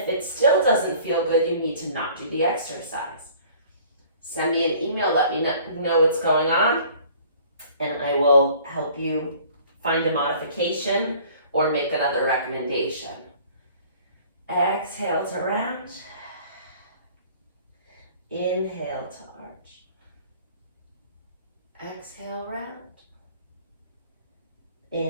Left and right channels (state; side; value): inverted; both; correlation -0.51